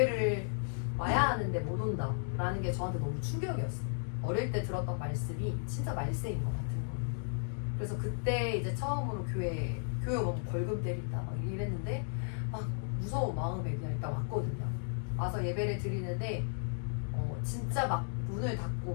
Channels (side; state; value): right; silent; digital silence